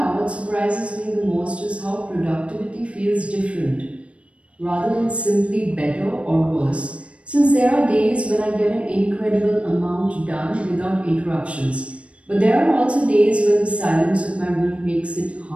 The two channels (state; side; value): late; left; 0.061 ms